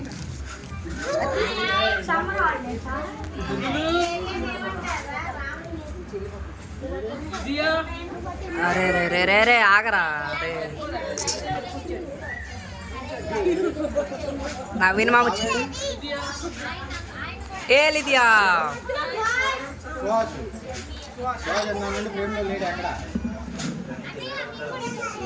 అరే రే రే రే రే ఆగరా రే నవీన్ మామ వచ్చింది ఏ లిదియా సుహాస్ సుహాస్ అన్నానండి ఫ్రేమ్లో లేడు ఎక్కడ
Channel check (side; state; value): both; identical; correlation 1.00